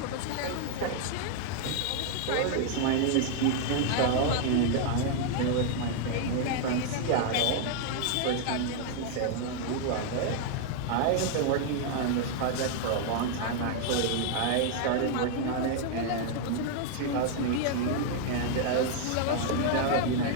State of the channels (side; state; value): both; different; correlation 0.00